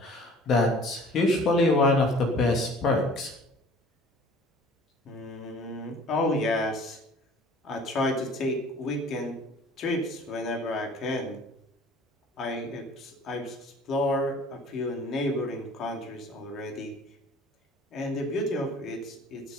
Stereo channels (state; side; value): normal; both; correlation 0.49